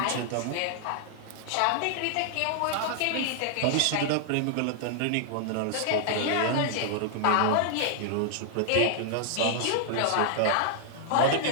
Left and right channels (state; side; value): different; both; correlation 0.00